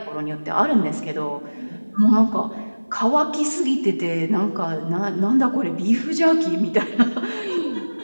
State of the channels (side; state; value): both; inverted; correlation -1.00